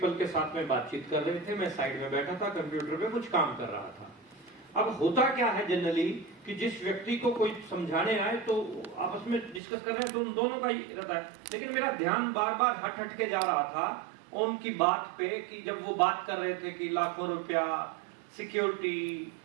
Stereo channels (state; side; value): drops out; left; at 9.6 s